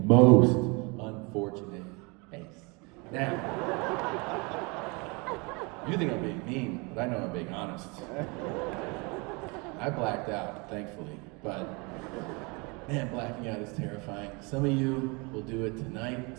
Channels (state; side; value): quieter; left; 29.2 dB